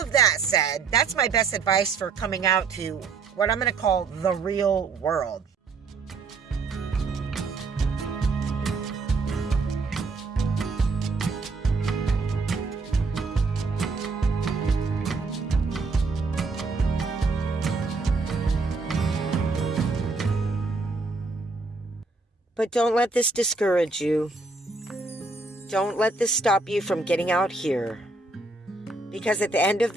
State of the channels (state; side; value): quieter; left; 3.9 dB